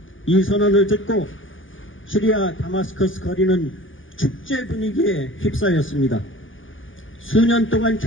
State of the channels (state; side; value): late; right; 0.57 ms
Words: 이 선언을 듣고 시리아 다마스커스 거리는 축제 분위기에 휩싸였습니다. 수년 동안